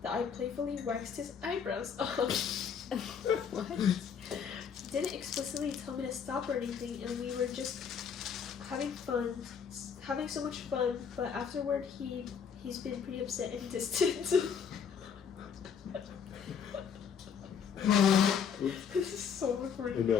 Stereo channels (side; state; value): right; quieter; 7.1 dB